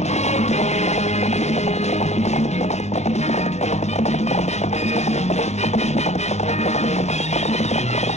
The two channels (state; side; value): late; right; 0.32 ms